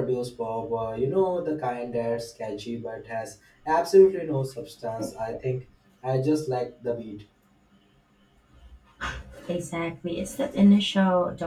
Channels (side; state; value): both; identical; correlation 1.00